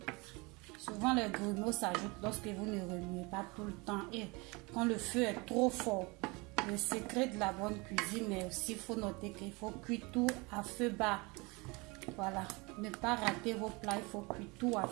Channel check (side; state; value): left; quieter; 26.6 dB